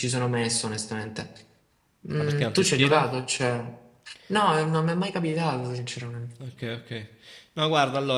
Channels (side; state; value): both; identical; correlation 1.00